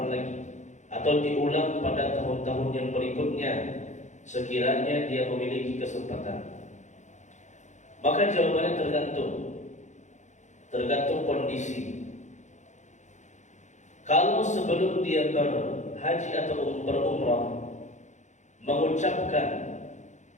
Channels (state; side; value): late; right; 0.35 ms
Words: lagi, atau diulang pada tahun-tahun yang berikutnya sekiranya dia memiliki kesempatan? Maka jawabannya tergantung kondisi. Kalau sebelum dia berhaji atau berumrah mengucapkan